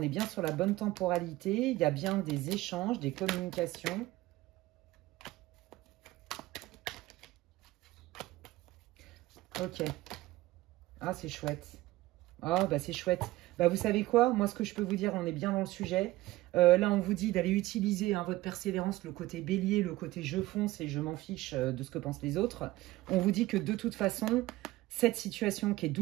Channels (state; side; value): quieter; left; 18.0 dB